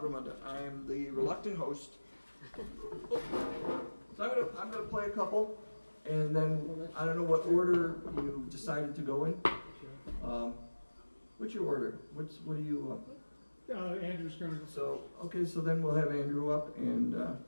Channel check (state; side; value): inverted; both; correlation -1.00